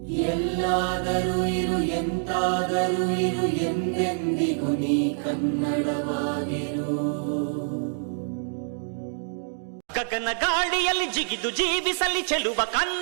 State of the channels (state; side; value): silent; left; digital silence